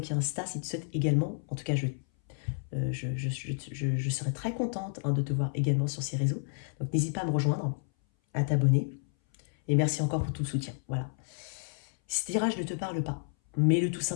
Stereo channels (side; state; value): right; silent; 57 dB below the other